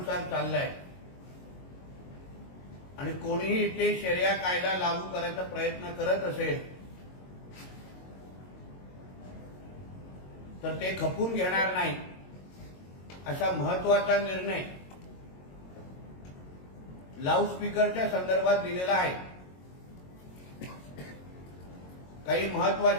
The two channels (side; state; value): right; late; 22 ms